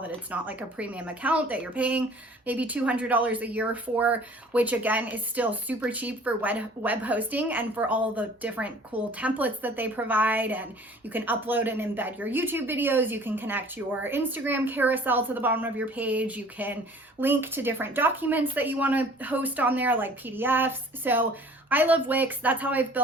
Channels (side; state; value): both; normal; correlation 0.50